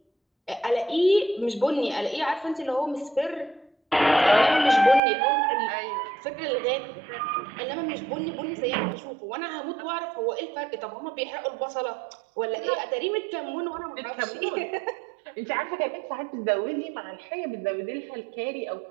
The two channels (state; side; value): drops out; left; at 5.0 s